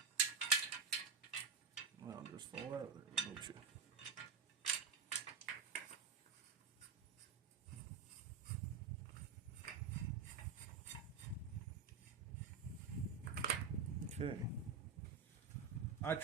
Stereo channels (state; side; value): quieter; left; 5.7 dB